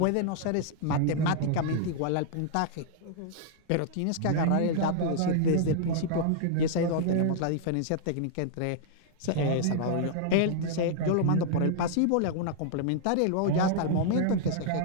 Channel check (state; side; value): different; both; correlation -0.01